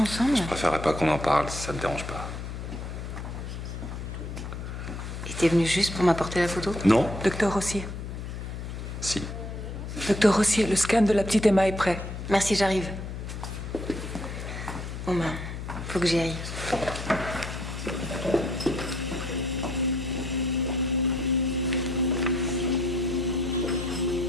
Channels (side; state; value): left; noise; hum, 7 dB below the sound